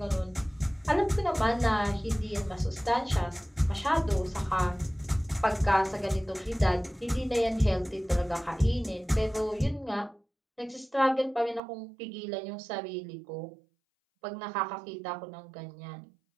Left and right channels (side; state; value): left; drops out; at 11.6 s